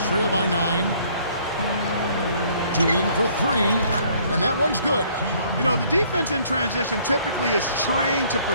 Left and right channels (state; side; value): inverted; both; correlation -0.61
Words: trail by 9. Dueling for 3. And that one's good. You know, the defense in transition typically is trained to